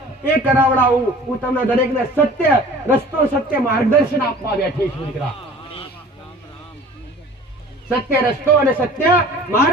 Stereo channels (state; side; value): normal; both; correlation 0.45